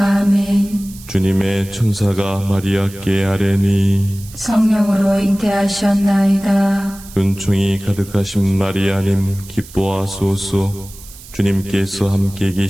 주님의 천사가 마리아께 아뢰니 성령으로 잉태하셨나이다. 은총이 가득하신 마리아님 기뻐하소서. 주님께서 함께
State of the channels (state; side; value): noise; right; hiss, 19 dB below the sound